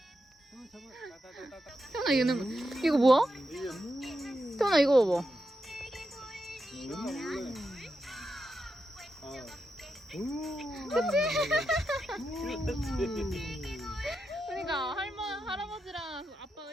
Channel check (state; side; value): normal; both; correlation 0.86